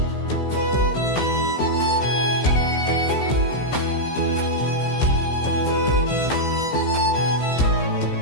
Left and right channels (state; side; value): late; right; 15 ms